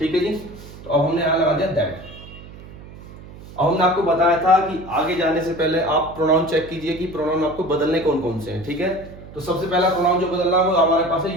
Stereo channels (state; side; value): noise; right; hum, 17 dB below the sound